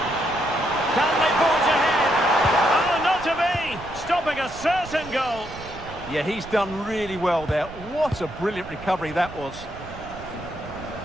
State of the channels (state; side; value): noise; right; rumble, 15 dB below the sound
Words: Can they forge ahead? Oh, not to be! Stopping a certain goal. Yeah, he's done really well there. What a brilliant recovery that was.